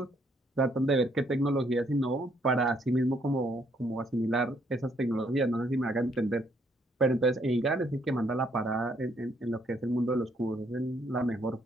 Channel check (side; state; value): both; normal; correlation 0.69